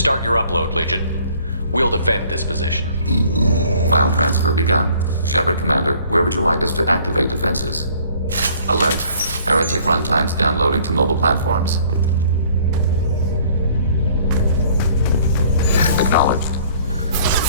your upload, Legion. We'll defend this position. File transfer begun. Shepard Commander, where would you like us to activate defenses? Alert. Heretic runtimes downloading to mobile platforms. Acknowledged.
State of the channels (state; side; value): inverted; both; correlation -0.56